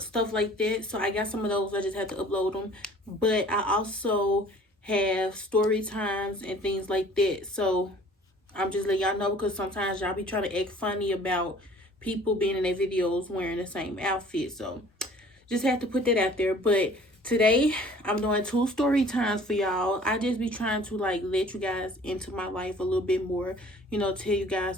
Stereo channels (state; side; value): normal; both; correlation 0.51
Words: like that. So I got some of those. I just had to upload them. But I also have story times and things like that. So I'm just letting y'all know because sometimes y'all be trying to act funny about people being in their videos wearing the same outfit. So just had to put that out there. But today I'm doing two story times for y'all. I just be trying to like let you guys into my life a little bit more, tell you